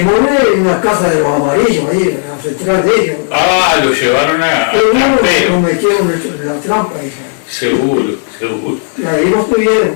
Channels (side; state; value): right; silent; digital silence